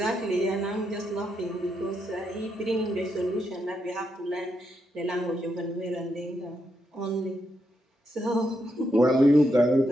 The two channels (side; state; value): both; normal; correlation 0.81